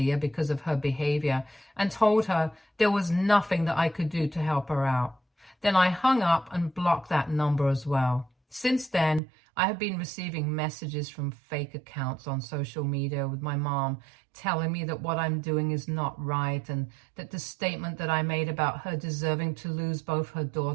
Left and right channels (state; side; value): drops out; left; at 9.2 s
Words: because of her behavior, and told her there was nothing that I could do to help her out. Then I hung up and blocked that number as well. Since then, I have been receiving messages from fake accounts on social media with my mom telling me that what I'm doing is not right and that the statement that I made about her deserving to lose both her